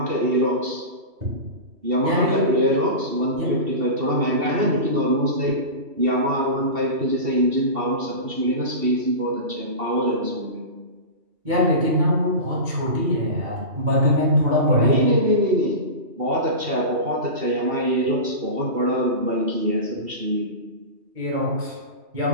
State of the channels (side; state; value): left; late; 2.7 ms